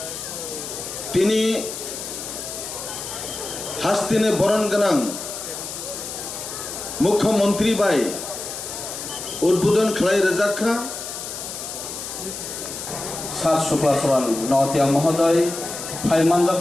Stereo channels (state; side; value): noise; left; hiss, 8 dB below the sound